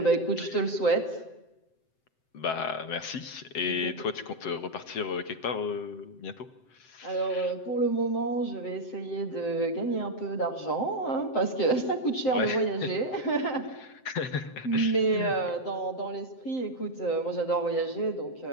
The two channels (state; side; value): late; right; 7.7 ms